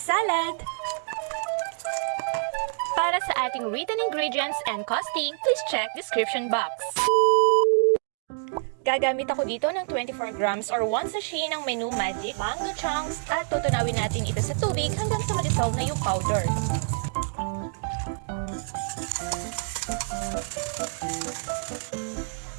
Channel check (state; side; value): silent; left; digital silence